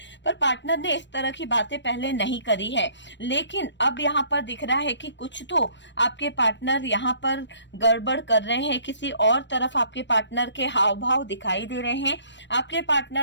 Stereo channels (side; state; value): right; late; 0.53 ms